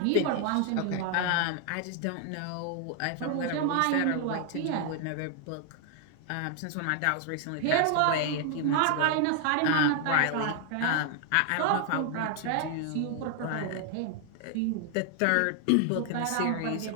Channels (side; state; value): both; different; correlation 0.00